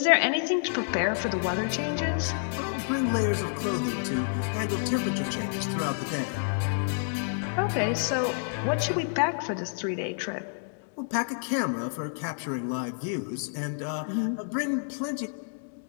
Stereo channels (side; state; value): right; silent; digital silence